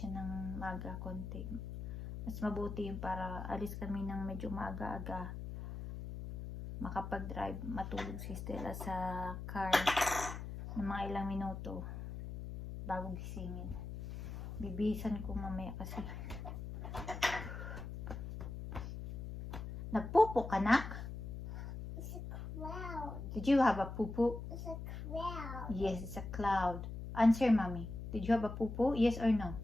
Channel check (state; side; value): noise; left; hum, 7 dB below the sound